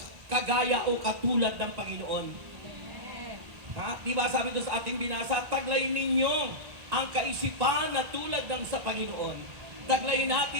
kagaya o katulad ng Panginoon. Di ba sabi doon sa ating binasa, taglayin ninyo ang kaisipan na tulad ng sa Panginoon. Taglayin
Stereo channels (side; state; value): left; late; 1.9 ms